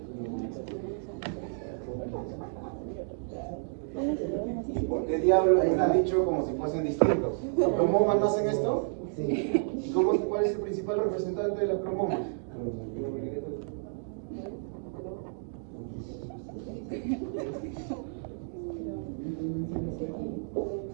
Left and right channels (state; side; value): silent; left; digital silence